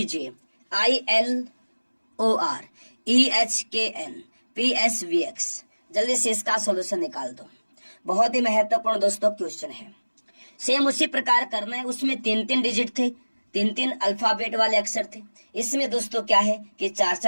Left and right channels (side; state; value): both; inverted; correlation -1.00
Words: ILOR EHKN PSVX। जल्दी से इसका सॉल्यूशन निकाल दो। बहुत ही महत्वपूर्ण दोस्तों क्वेश्चन है। सेम उसी प्रकार करना है। उसमें 3 डिजिट थे, 3 अल्फाबेट वाले अक्षर थे। इसमें दोस्तों क्या है कि